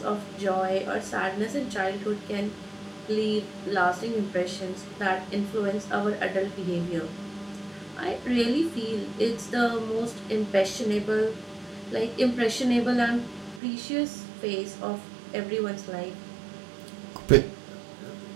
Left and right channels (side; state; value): left; drops out; at 13.6 s